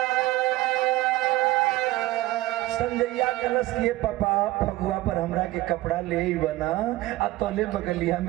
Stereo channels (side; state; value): left; quieter; 17.6 dB